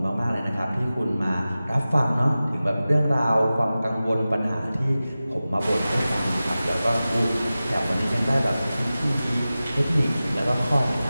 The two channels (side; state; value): both; inverted; correlation -0.96